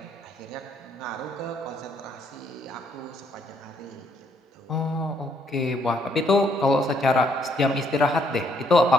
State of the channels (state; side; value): normal; both; correlation 0.70